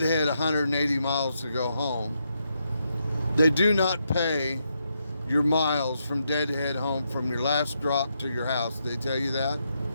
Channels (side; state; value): both; inverted; correlation -0.81